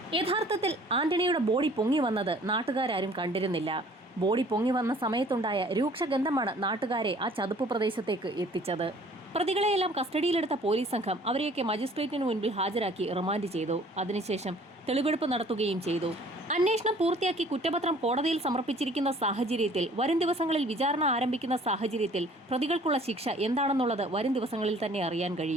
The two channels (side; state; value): both; normal; correlation 0.53